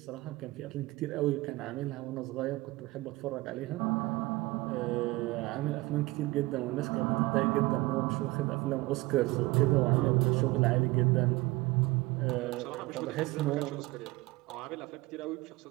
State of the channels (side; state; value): left; quieter; 20.9 dB